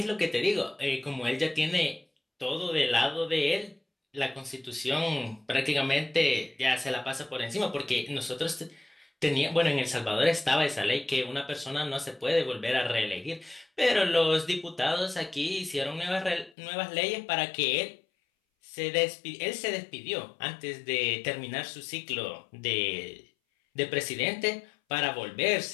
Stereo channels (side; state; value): right; drops out; at 16.5 s